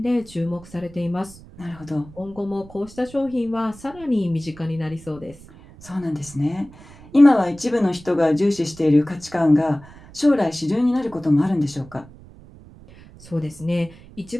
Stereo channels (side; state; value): right; noise; rumble, 21 dB below the sound